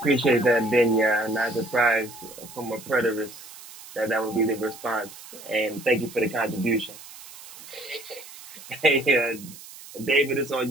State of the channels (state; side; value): noise; right; hiss, 16 dB below the sound